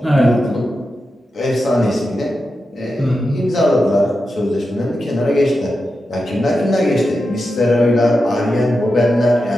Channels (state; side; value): normal; both; correlation 0.89